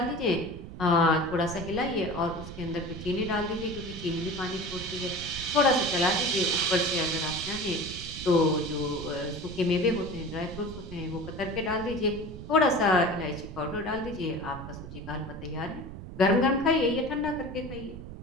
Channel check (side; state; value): right; noise; rumble, 11 dB below the sound